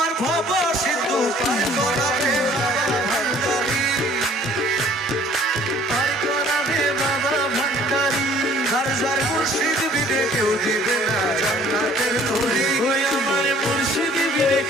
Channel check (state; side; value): normal; both; correlation 0.55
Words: ভব সিন্ধু পার করাবে বাবা ভান্ডারি, পার করাবে বাবা ভান্ডারি। আর যার মুর্শিদ বিনে কেউ দিবে না জান্নাতের তরি, ওই আমার মুর্শিদ বিনে